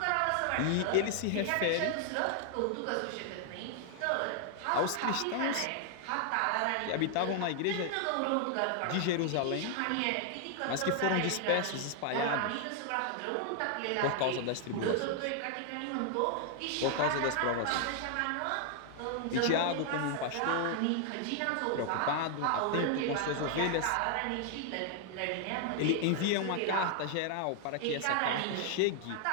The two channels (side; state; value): both; different; correlation 0.00